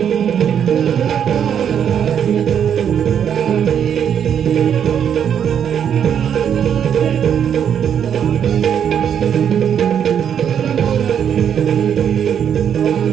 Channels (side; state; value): left; quieter; 8.5 dB